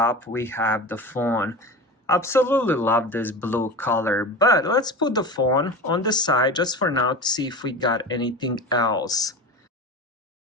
we have the phone. Absolutely love this blue color, but let's put the phone on the side just for now to see if we got anything else.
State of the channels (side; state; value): both; normal; correlation 0.30